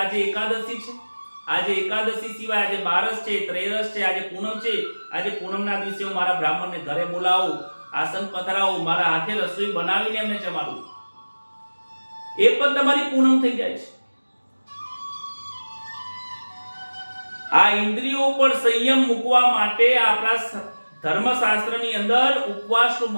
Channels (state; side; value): inverted; both; correlation -1.00